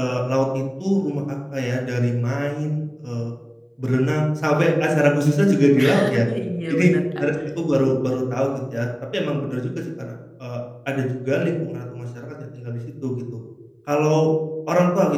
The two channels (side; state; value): both; identical; correlation 1.00